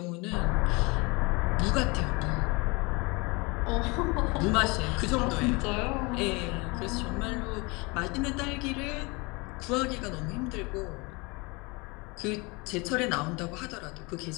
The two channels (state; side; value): quieter; right; 26.9 dB